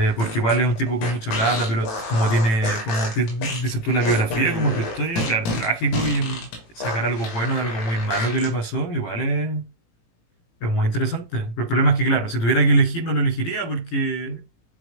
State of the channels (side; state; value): right; late; 18 ms